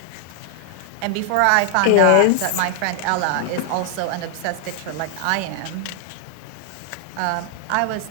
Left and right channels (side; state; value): both; different; correlation 0.00